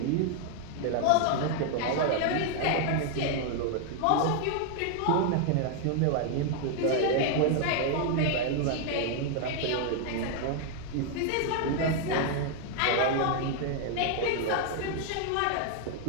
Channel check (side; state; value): both; different; correlation 0.00